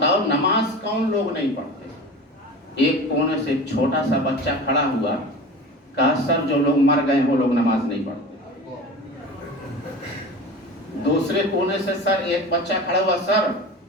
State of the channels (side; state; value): both; normal; correlation 0.34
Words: نماز کون لوگ نہیں پڑھتے؟ ایک کونے سے ایک چھوٹا سا بچہ کھڑا ہوا، کہا سر جو لوگ مر گئے وہ لوگ نماز نہیں پڑھتے۔ دوسرے کونے سے سر ایک بچہ کھڑا ہوا، سر